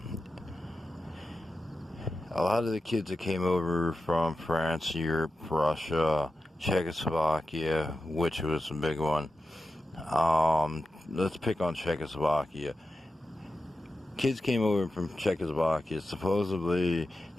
lot of the kids that came over from France, Europe, Russia, Czechoslovakia, which was a big one. Let's pick on Czechoslovakia. Kids came over from Czechoslovakia. Supposedly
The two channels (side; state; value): both; normal; correlation 0.91